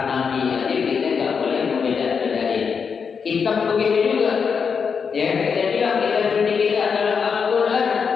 nabi. Jadi kita nggak boleh membeda-bedain. Kitab begitu juga. Ya, kita bilang kita suci kita adalah Al-Quran.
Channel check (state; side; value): quieter; right; 6.1 dB